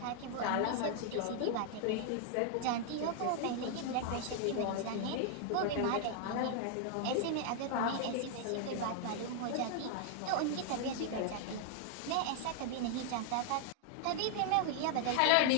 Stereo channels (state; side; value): different; both; correlation 0.00